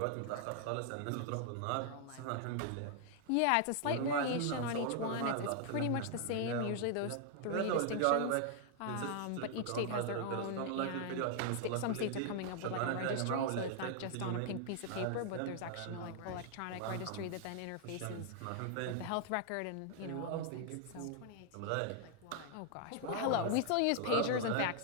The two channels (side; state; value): both; different; correlation 0.00